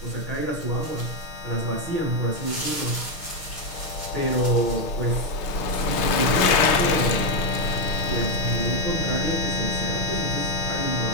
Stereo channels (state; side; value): late; right; 6.4 ms